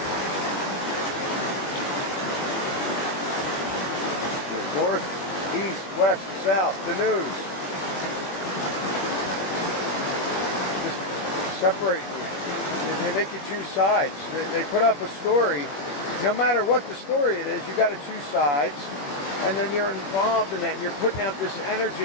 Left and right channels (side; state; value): right; late; 20 ms